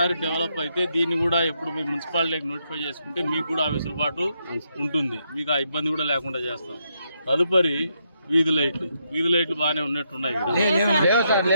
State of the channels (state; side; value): inverted; both; correlation -0.79